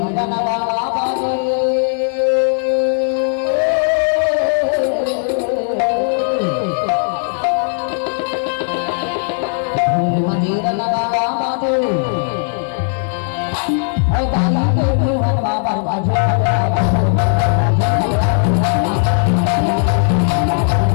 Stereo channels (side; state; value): right; silent; digital silence